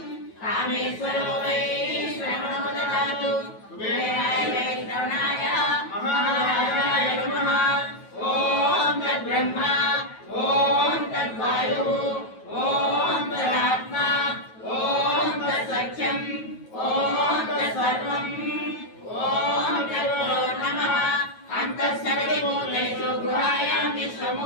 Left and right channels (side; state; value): right; late; 9.2 ms